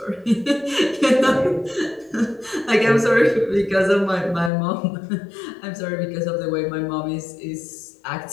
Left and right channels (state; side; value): drops out; right; at 4.5 s